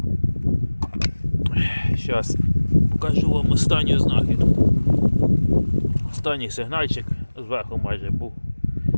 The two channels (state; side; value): inverted; both; correlation -1.00